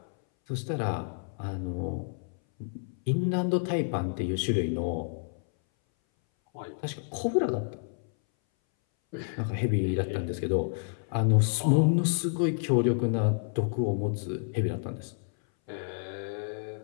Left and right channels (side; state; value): right; silent; 58 dB below the other